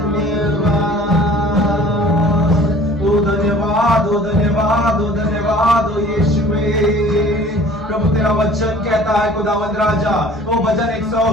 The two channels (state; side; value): normal; both; correlation 0.49